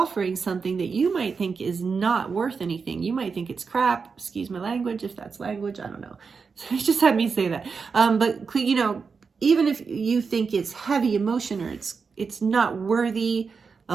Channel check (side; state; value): left; quieter; 5.3 dB